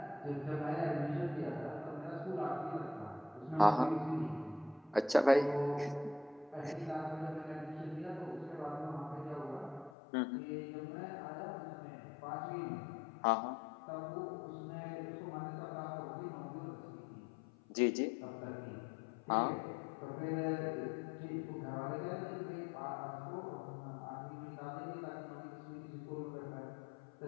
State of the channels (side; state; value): right; drops out; at 9.9 s